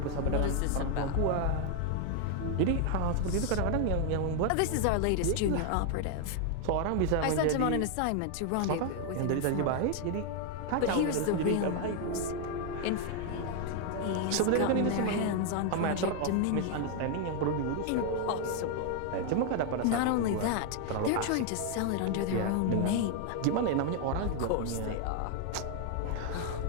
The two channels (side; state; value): both; different; correlation 0.00